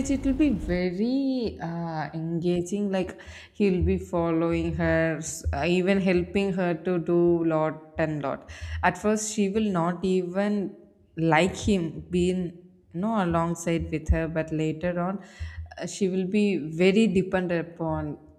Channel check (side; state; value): both; identical; correlation 1.00